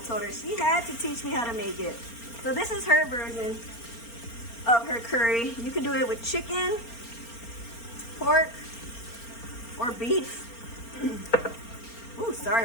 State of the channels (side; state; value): right; late; 4.3 ms